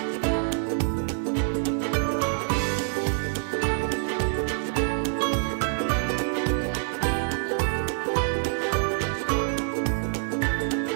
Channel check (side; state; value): left; silent; 61 dB below the other